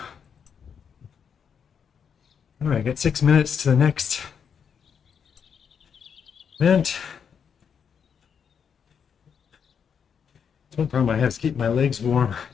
All right, got 6 minutes to the next event. One problem I have is keep my legs warm.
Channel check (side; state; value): right; quieter; 7.2 dB